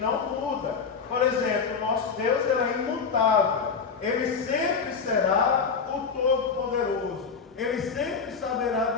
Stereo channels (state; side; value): quieter; right; 5.6 dB